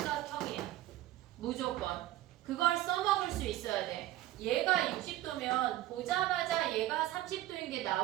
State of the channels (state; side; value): quieter; left; 15.2 dB